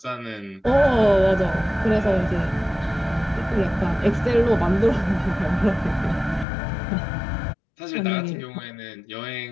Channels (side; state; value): right; drops out; at 6.5 s